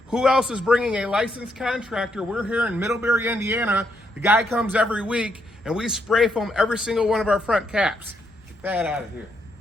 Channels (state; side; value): normal; both; correlation 0.77